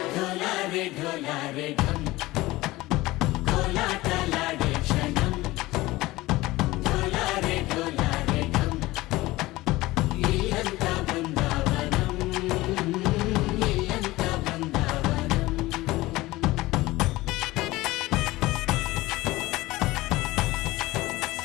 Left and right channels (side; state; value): right; quieter; 19.0 dB